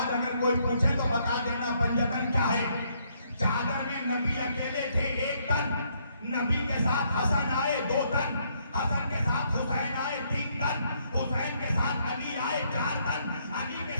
اگر کوئی پوچھے تو بتا دینا پنجتن کیا ہے۔ چادر میں نبی اکیلے تھے 1 تن، نبی کے ساتھ حسن آئے 2 تن، حسن کے ساتھ حسین آئے 3 تن، حسین کے ساتھ علی آئے 4 تن، علی کے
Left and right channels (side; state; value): both; inverted; correlation -0.71